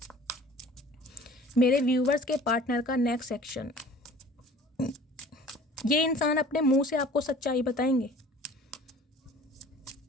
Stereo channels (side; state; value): both; normal; correlation 0.47